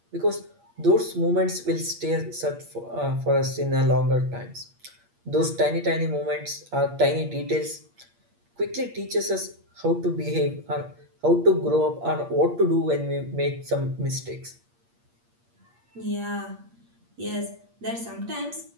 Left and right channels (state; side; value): late; left; 8.5 ms